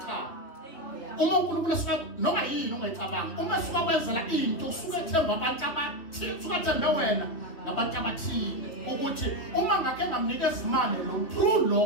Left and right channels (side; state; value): right; late; 3.1 ms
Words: Cha. Uma uNkulunkulu asika noma yini ongayicabanga uma suka kwenzela into usuke ethemba abantu abathile usuke ethembe wena nabantu abathile ukuthi uma ngake ngamnikeza imali lo true